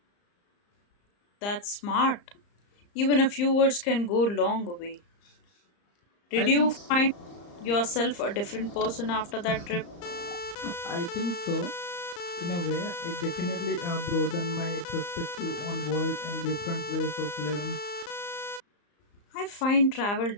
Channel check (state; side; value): late; right; 35 ms